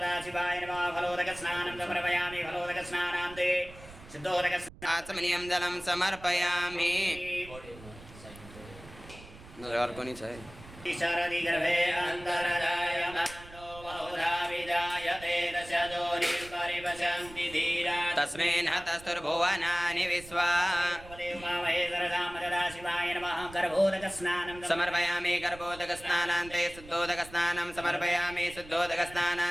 आचमनीयं जलं समर्पयामि और को नहीं चाहिए शरदि गर्भे अंतरजायमानो बहुधा विजायते दशजोनिर्परिपशन्ति धीरा तस्मिन् हतस्तुर्भुवनानि विश्वा समर्पयामि गर्भोदकस्नानान्ते शुद्धोदकस्नानं समर्पयामि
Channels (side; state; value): right; noise; rumble, 18 dB below the sound